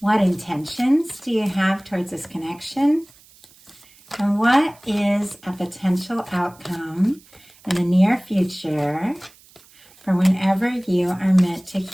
intentions do you have towards this connection? And what is a potential outcome in the near future for whenever you are meant to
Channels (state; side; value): noise; right; hiss, 27 dB below the sound